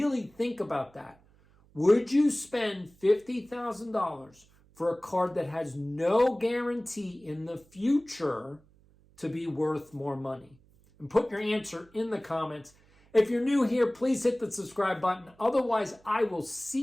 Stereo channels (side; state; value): right; noise; hum, 29 dB below the sound